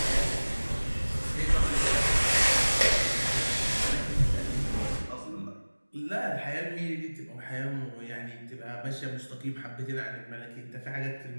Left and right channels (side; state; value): both; inverted; correlation -1.00